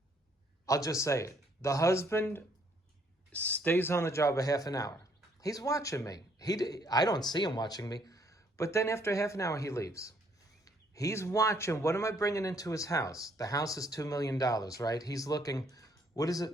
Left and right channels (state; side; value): normal; both; correlation 0.67